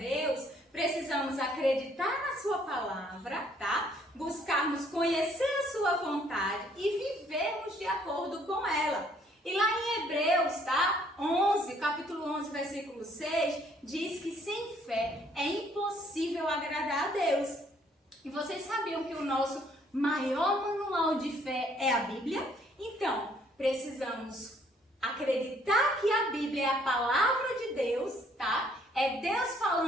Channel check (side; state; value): both; normal; correlation 0.64